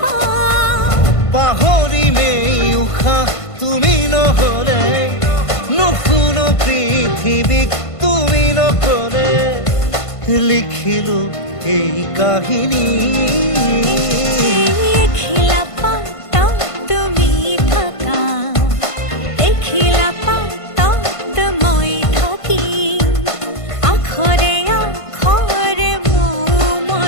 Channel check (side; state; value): right; late; 1.5 ms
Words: পাহৰিমেই উশাহ তুমি নহ'লে নুশুনো পৃথিৱীক তুমি নকলে লিখিলো এই কাহিনী এখিলা পাতত তুমি থাকা এখিলা পাতত মই থাকিম আখৰে আখৰে মোৰ